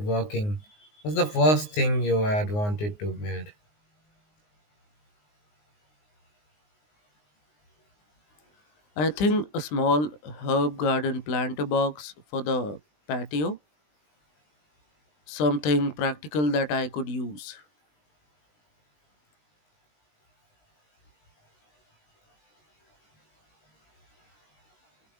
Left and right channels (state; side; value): late; right; 19 ms